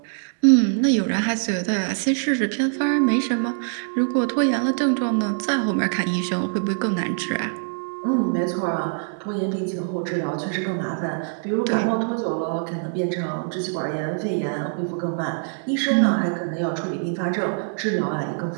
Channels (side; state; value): left; silent; digital silence